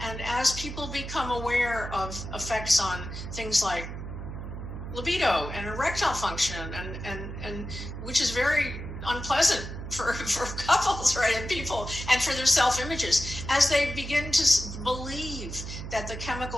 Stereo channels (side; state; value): right; noise; hum, 8 dB below the sound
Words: as people become aware of effects on things like libido and erectile function, and which is very unpleasant for couples, right, and people, and for their self-images, as they begin to believe that the